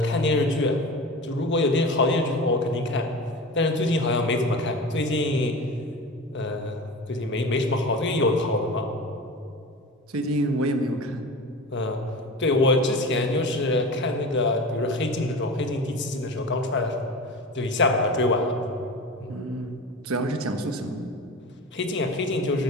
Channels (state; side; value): normal; both; correlation 0.32